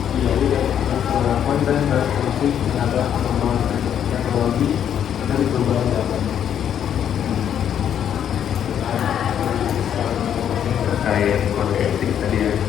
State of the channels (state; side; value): quieter; right; 9.3 dB